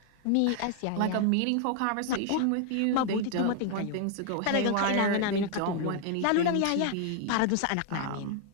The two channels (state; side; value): different; both; correlation 0.00